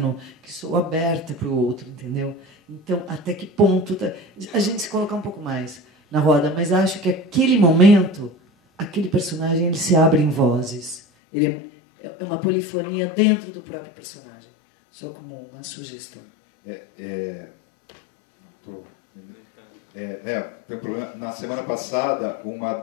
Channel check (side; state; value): right; drops out; at 11.0 s